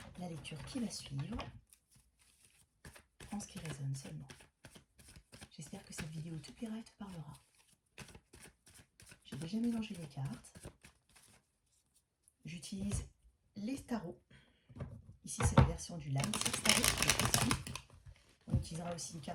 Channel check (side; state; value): both; identical; correlation 1.00